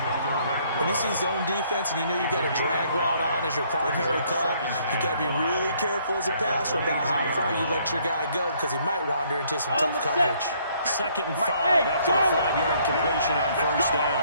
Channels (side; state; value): both; inverted; correlation -0.65